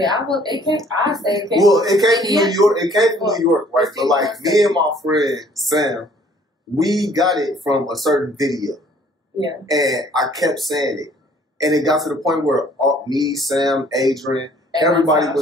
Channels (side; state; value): both; normal; correlation 0.58